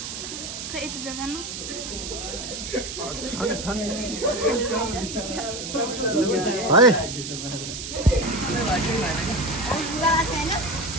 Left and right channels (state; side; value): noise; right; hiss, 7 dB below the sound